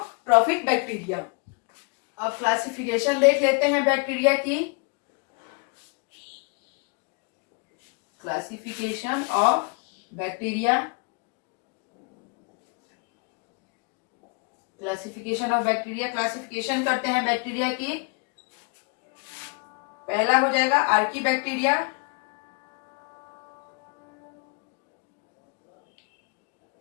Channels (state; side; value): quieter; right; 33.4 dB